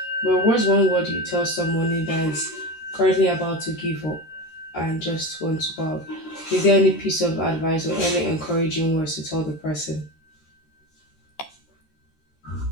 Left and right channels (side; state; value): right; late; 13 ms